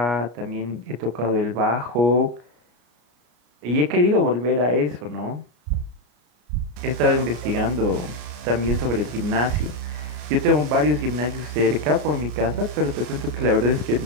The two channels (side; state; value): left; late; 33 ms